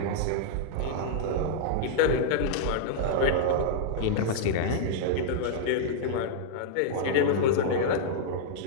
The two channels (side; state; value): both; different; correlation -0.01